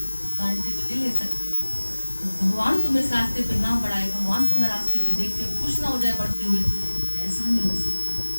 गारंटी तो नहीं ले सकते। भगवान तुम्हें इस रास्ते पे ना बढ़ाए, भगवान तुम्हें रास्ते पे देख के खुश ना हो जाए बढ़ते हुए, ऐसा नहीं हो सकता।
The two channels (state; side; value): inverted; both; correlation -1.00